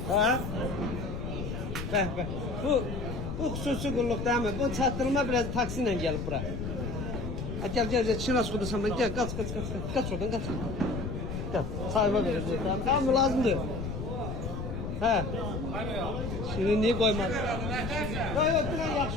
Ha? Bəh. Bu xüsusi qulluq değil mi? Bu çatdırma biraz taksi ilə gəlib bura. Gel Çinas kudusan ben gel kaç oradan kaç. Gel sahiba vereceğiz tamam mı lazım diyor. He. Şimdi niye koymaz? Yok dilen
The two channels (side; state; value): left; noise; rumble, 5 dB below the sound